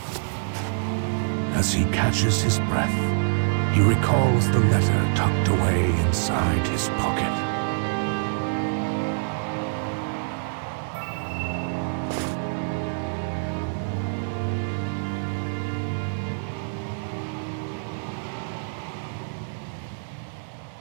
As he catches his breath, he recalls the letter tucked away inside his pocket.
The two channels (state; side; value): silent; left; digital silence